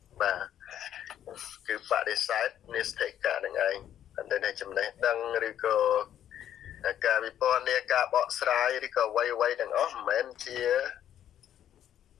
បាទគឺបដិសេធនេស្ថិកៈនឹងឯងអន្តរចំណេះដឹងឬក៏ការវិពណ៌នាការបកស្រាយឬក៏អ្វីទាំងអស់មិនមែនជា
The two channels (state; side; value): quieter; right; 10.6 dB